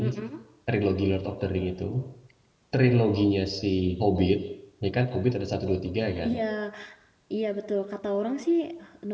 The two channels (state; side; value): identical; both; correlation 1.00